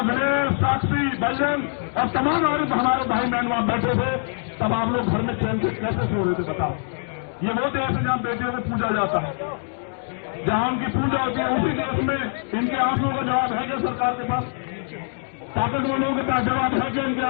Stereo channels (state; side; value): silent; right; 63 dB below the other